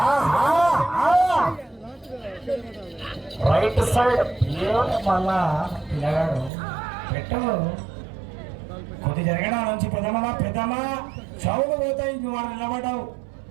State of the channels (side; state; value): left; drops out; at 6.5 s